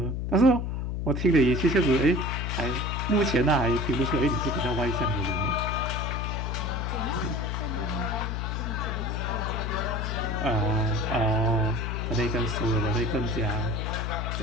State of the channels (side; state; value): left; noise; hum, 2 dB below the sound